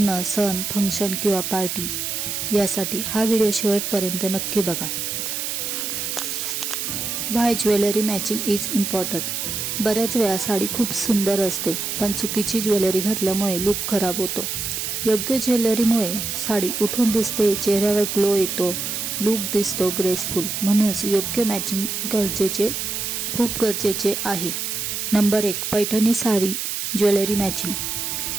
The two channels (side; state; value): right; noise; hiss, 3 dB below the sound